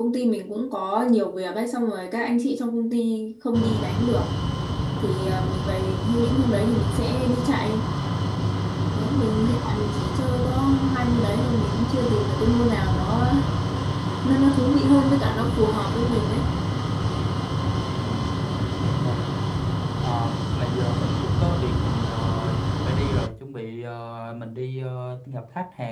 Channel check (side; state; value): both; identical; correlation 1.00